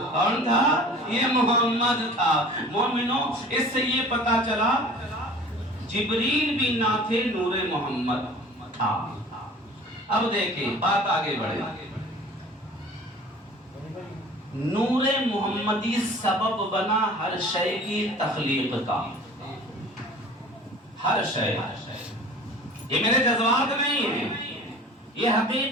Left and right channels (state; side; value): normal; both; correlation 0.44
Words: کون تھا؟ یہ محمد تھا۔ مومنوں اس سے یہ پتا چلا جبریل بھی نہ تھے، نور محمد تھا۔ اب دیکھیں بات آگے بڑھے، نور محمدی سبب بنا ہر شے کی تخلیق کا، ہر شے، یہ میرے جذبات نہیں ہیں، یہ